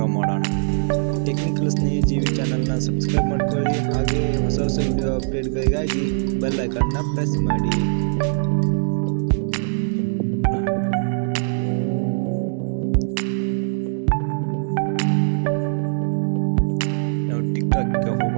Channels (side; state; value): left; silent; 64 dB below the other